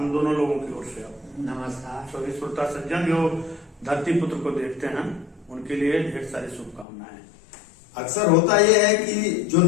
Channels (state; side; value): drops out; right; at 6.9 s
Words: दोनों लोगों की ओर से नमस्कार। सभी श्रोता सज्जन जो धरती पुत्र को देखते हैं उनके लिए ढेर सारी शुभकामनाएं। अक्सर होता यह है कि जो